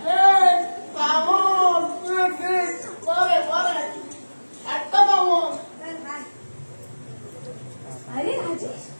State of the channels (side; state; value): both; inverted; correlation -1.00